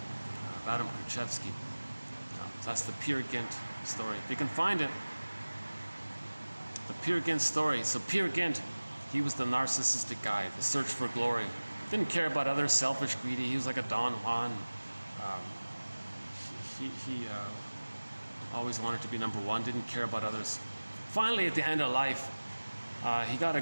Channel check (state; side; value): inverted; both; correlation -1.00